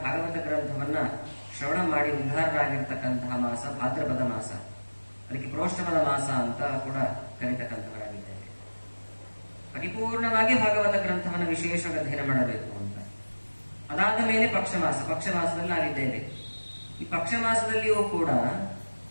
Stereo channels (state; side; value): inverted; both; correlation -1.00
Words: ಭಾಗವತ ಗ್ರಂಥವನ್ನ ಶ್ರವಣ ಮಾಡಿ ಉದ್ಧಾರರಾಗಿರ್ತಕ್ಕಂತಹ ಮಾಸ ಭಾದ್ರಪದ ಮಾಸ. ಅದಕ್ಕೆ ಪ್ರೋಷ್ಠಪದ ಮಾಸ ಅಂತ ಕೂಡ ಕರೀತಕ್ಕಂಥವರಾಗಿದ್ದೇವೆ. ಪರಿಪೂರ್ಣವಾಗಿ ಭಾಗವತ ಗ್ರಂಥವನ್ನು ವಿಶೇಷವಾಗಿ ಅಧ್ಯಯನ ಮಾಡಬೇಕು ಅಂತ. ಅದಾದ ಮೇಲೆ ಪಕ್ಷಮಾಸದಲ್ಲಿ ನಾವಿದ್ದೇವೆ. ಈ ಪಕ್ಷಮಾಸದಲ್ಲಿಯೂ ಕೂಡ